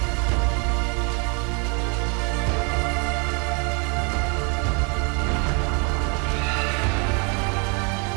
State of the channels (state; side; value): quieter; left; 34.3 dB